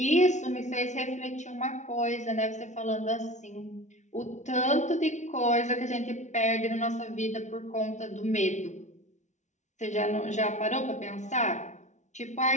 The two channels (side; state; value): right; late; 0.34 ms